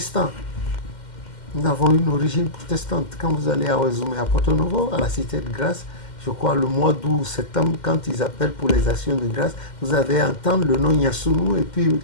Nous avons une origine protestante. Quand vous allez à Ouazoumé, à Porto Novo, à la Cité de Grâce, je crois le mois d'août, septembre, quand ils appellent pour les actions de grâce, vous allez entendre le nom Yassounou et puis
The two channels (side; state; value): right; late; 2.1 ms